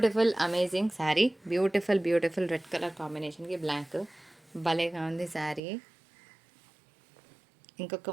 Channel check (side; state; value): left; drops out; at 5.6 s